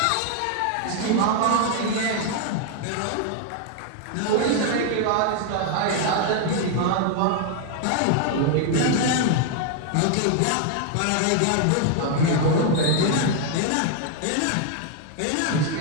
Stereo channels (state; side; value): different; both; correlation 0.00